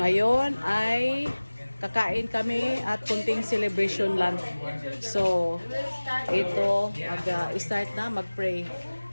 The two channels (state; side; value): inverted; both; correlation -1.00